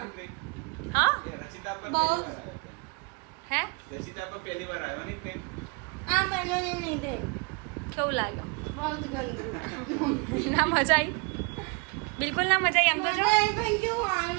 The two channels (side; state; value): left; quieter; 32.1 dB